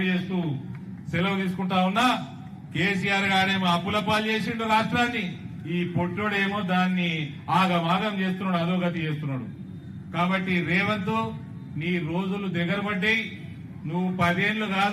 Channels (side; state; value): both; identical; correlation 1.00